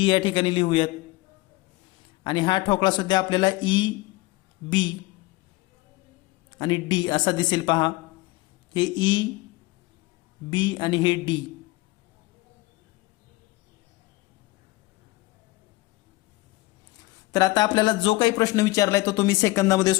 या ठिकाणी लिहूयात आणि हा ठोकळा सुद्धा आपल्याला ई बी आणि डी असा दिसेल. पहा हे ई बी आणि हे डी. तर आता आपल्याला जो काही प्रश्न विचारलाय तो तुम्ही सेकंदामध्ये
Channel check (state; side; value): quieter; right; 20.9 dB